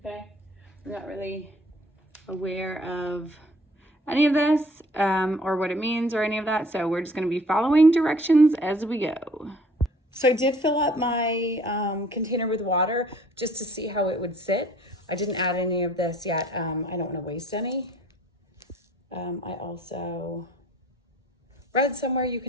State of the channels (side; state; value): both; normal; correlation 0.55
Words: I'm not really aware of any of this or what it means or any of that. So we're just gonna be following directions as we go. So I did fill up my container with water just to see how it would sit. I didn't add any of this yet. I don't want to waste any. I also read somewhere you